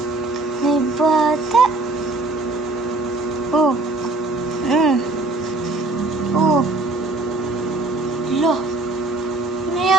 May bata. Oh. Oh. Lo. Ano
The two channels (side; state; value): left; quieter; 3.1 dB